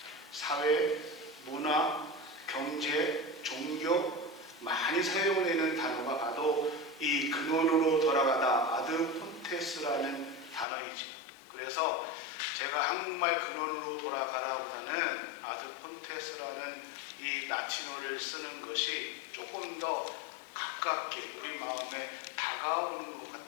사회, 문화, 경제, 종교 많이 사용되는 단어가 바로 이 근원으로 돌아가다 아드 폰테스라는 단어이죠. 그래서 제가 한국말 근원으로 돌아가라보다는 아드 폰테스라는 이 라틴어를 쓰는 것이 조금 더 가깝게 우리 마음에 다가오는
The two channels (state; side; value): drops out; right; at 10.7 s